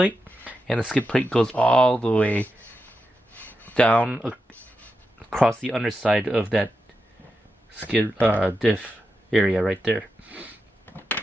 and the skid plate goes all the way down across the underside of that skid diff area right there.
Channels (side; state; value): both; normal; correlation 0.88